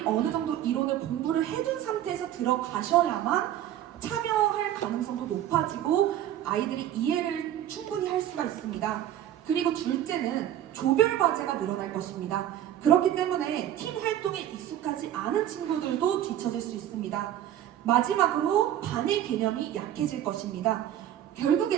어느 정도 이론을 공부를 해둔 상태에서 들어가셔야만 참여할 가능성도 높아지고 아이들이 이해를 충분히 할 수가 있습니다. 그리고 둘째는 조별 과제가 늘어날 것입니다. 그렇기 때문에 팀 활동에 익숙하지 않은 친구들도 뒤처질 수 있습니다. 마지막으로 반의 개념이 약해질 것입니다.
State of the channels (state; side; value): quieter; left; 11.7 dB